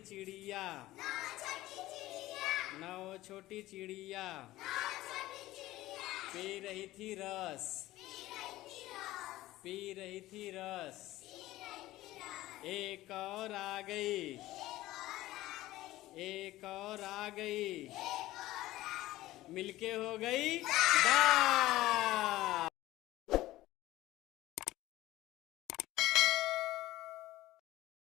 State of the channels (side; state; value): right; quieter; 16.5 dB